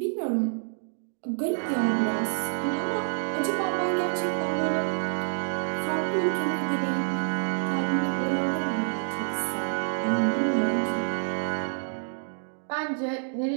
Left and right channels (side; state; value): left; silent; digital silence